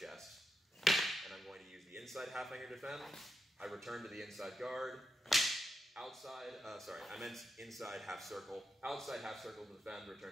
chest, and I'm going to use the inside half hanger defend. I return to the inside guard. Inside half circle. Outside half circle to defend, return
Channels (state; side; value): normal; both; correlation 0.85